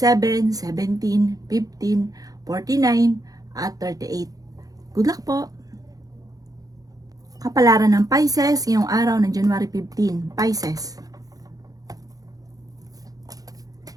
17, 15, 49 at 38. Good luck po! Kapalaran ng Pisces ngayong araw ng January 15. Pisces.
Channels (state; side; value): late; left; 0.18 ms